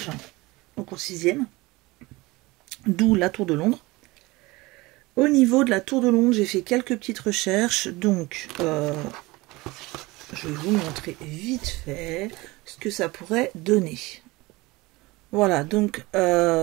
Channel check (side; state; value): left; quieter; 22.0 dB